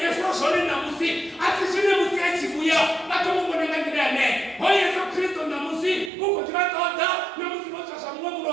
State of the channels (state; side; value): drops out; left; at 6.1 s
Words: Yesu sona na musi asisi ni musi achibuya bado Mungu anangandane Hoy Yesu Kristo na musi uko tibatoda na musi bocha samwa